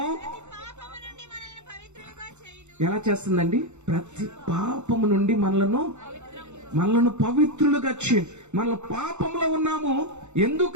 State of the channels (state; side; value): late; left; 0.83 ms